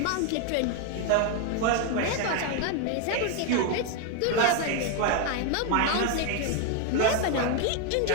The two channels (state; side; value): different; both; correlation 0.01